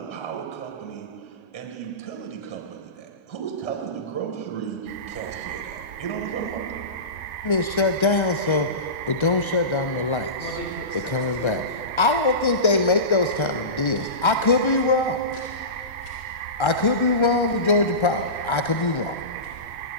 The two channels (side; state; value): right; late; 1.3 ms